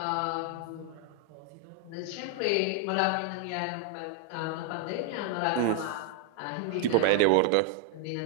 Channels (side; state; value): both; different; correlation 0.00